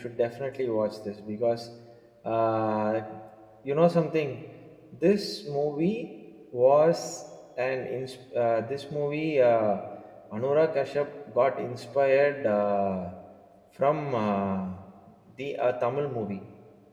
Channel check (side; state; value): both; identical; correlation 1.00